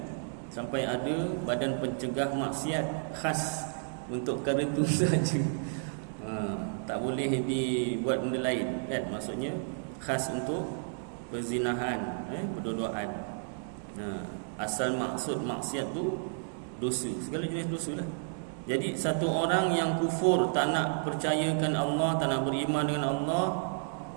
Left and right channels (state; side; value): silent; left; digital silence